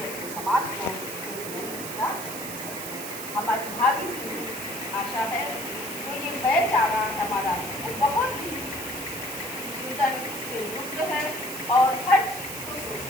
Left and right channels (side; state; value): right; noise; hiss, 8 dB below the sound